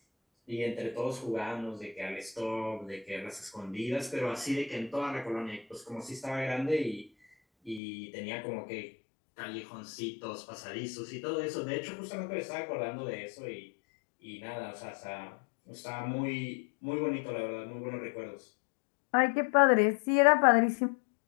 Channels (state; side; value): drops out; right; at 7.8 s